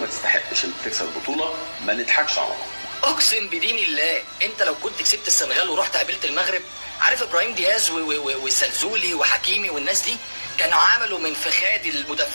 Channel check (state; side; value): inverted; both; correlation -1.00